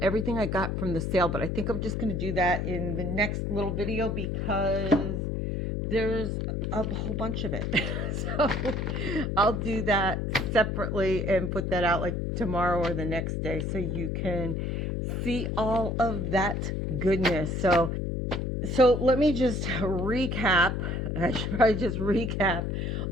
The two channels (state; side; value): noise; left; hum, 1 dB below the sound